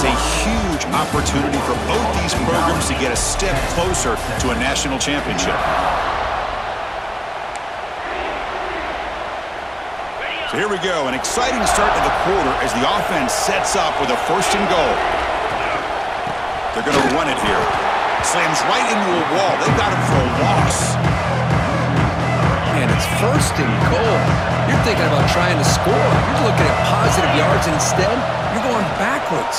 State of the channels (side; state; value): both; identical; correlation 1.00